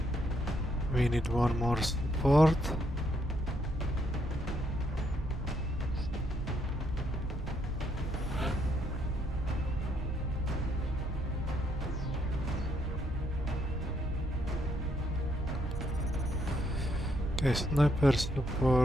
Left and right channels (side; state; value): both; normal; correlation 0.74